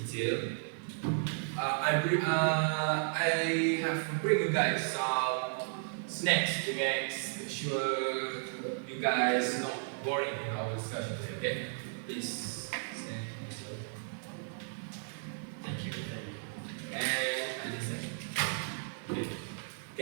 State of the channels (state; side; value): silent; left; 55 dB below the other